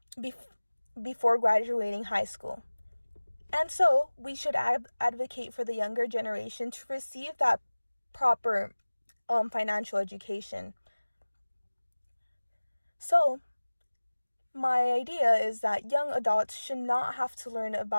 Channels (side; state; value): both; inverted; correlation -1.00